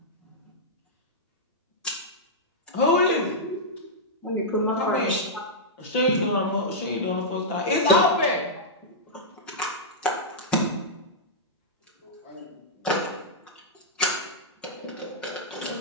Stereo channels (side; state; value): both; normal; correlation -0.10